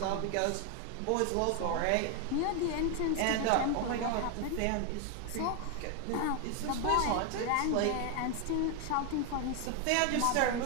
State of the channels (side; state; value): both; different; correlation 0.01